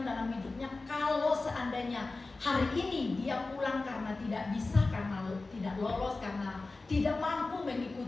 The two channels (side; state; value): right; quieter; 3.5 dB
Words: dalam hidupnya kalau seandainya hari ini dia pulang karena tidak bisa, karena tidak lolos, karena tidak mampu